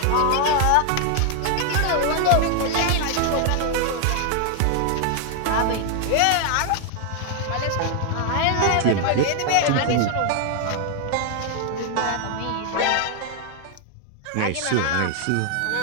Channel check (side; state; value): both; different; correlation 0.00